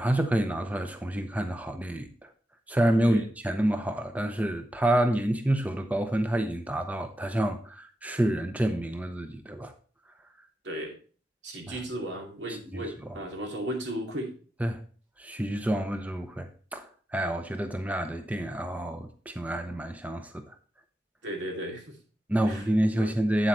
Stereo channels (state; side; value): normal; both; correlation 0.88